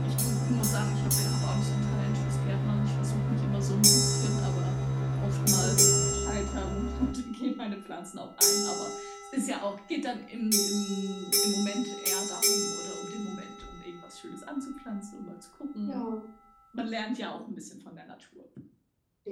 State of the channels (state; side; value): identical; both; correlation 1.00